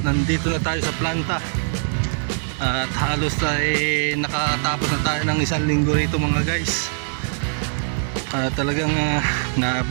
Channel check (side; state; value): left; silent; digital silence